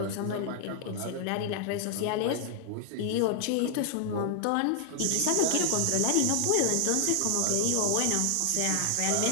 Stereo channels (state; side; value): different; both; correlation 0.00